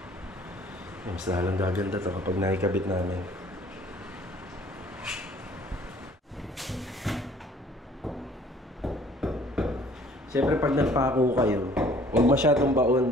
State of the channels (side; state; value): both; normal; correlation 0.55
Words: Mas lalong gaganda to kapag nakikabit namin. Siyempre pag nagpako kayo, huwag masyadong